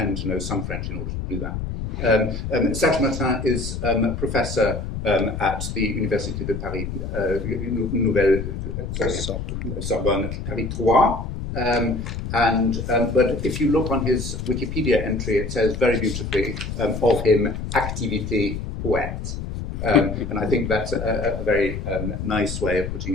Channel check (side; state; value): left; noise; rumble, 5 dB below the sound